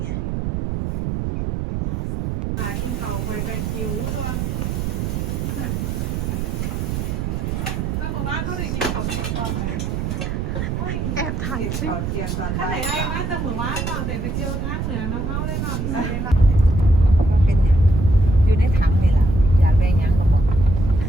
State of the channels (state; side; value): noise; right; rumble, 2 dB below the sound